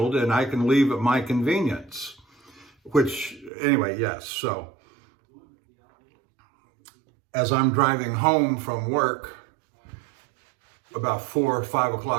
and I can leave at my convenience. Which, anyway, yes. So as I'm driving home from work about 4 or 5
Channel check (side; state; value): left; drops out; at 3.5 s